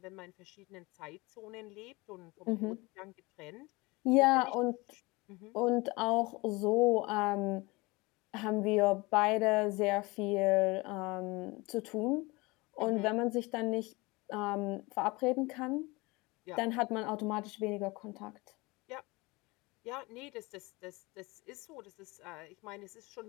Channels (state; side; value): quieter; right; 24.0 dB